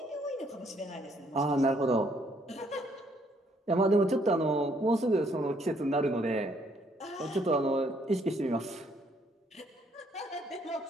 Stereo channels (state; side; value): normal; both; correlation 0.67